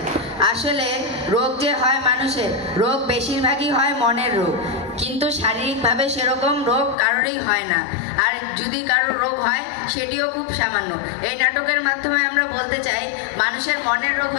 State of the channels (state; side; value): drops out; right; at 7.0 s